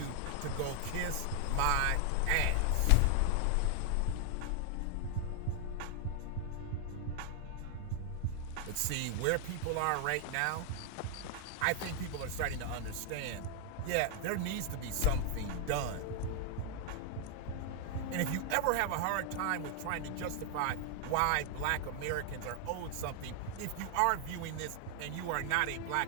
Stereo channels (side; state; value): both; different; correlation 0.00